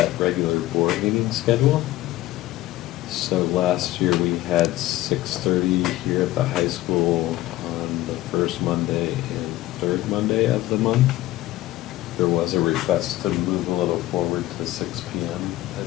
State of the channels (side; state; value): right; quieter; 16.3 dB